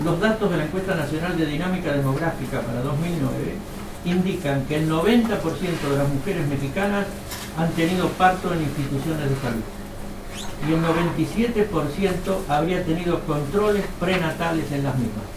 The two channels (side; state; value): both; identical; correlation 1.00